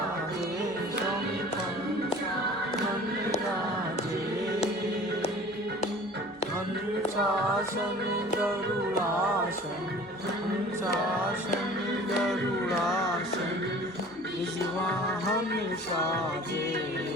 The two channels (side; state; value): both; normal; correlation 0.45